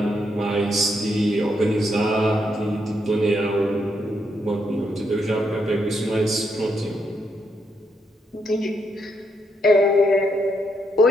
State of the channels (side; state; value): both; normal; correlation 0.78